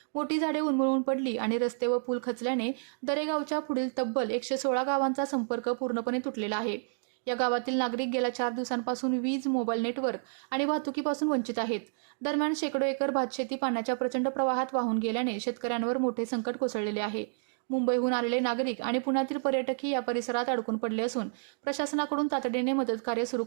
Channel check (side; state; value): left; silent; digital silence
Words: मोठी झाडे उन्मळून पडली आणि रस्ते व पूल खचल्याने दरेगावच्या पुढील तब्बल 116 गावांचा संपर्क पूर्णपणे तुटलेला आहे। या गावातील नागरिक गेल्या 4 दिवसांपासून वीज, मोबाईल नेटवर्क आणि वाहतुकीपासून वंचित आहेत। दरम्यान शेकडो एकर भातशेती पाण्याच्या प्रचंड प्रवाहात वाहून गेल्याने शेतकऱ्यांवर मोठे संकट कोसळलेले आहे। मुंबईहून आलेले नागरिक आणि पुण्यातील पर्यटकही या परिसरात अडकून पडले असून प्रशासनाकडून तातडीने मदत कार्य सुरू